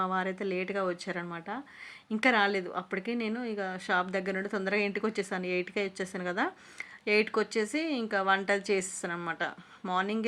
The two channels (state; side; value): identical; both; correlation 1.00